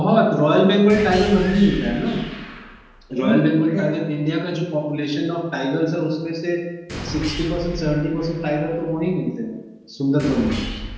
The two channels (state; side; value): identical; both; correlation 1.00